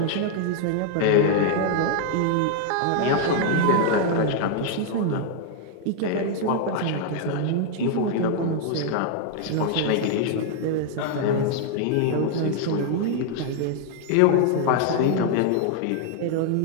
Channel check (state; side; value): different; both; correlation 0.00